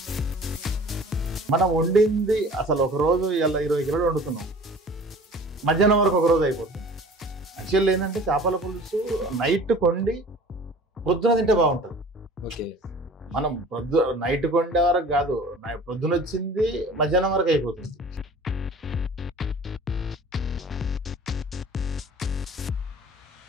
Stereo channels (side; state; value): both; normal; correlation 0.45